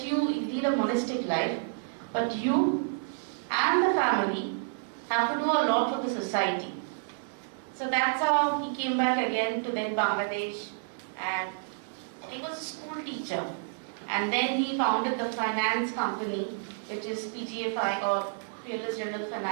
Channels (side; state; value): left; silent; digital silence